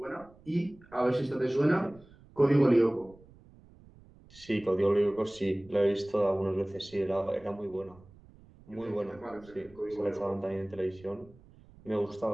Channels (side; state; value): right; noise; rumble, 24 dB below the sound